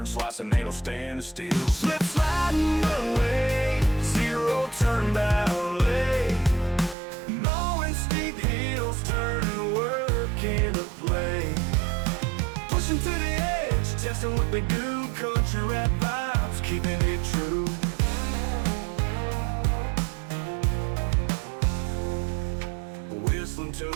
slicing, ain't no standing still. Slip sliding away, zero turn ballet. Mowing steep hills, turning work into play. Pushing to the edge, testing what they do. Country rap vibes, keeping it true. Whistling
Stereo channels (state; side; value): drops out; left; at 7.0 s